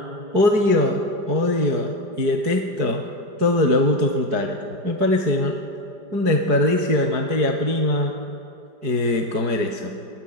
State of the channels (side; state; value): left; late; 4.7 ms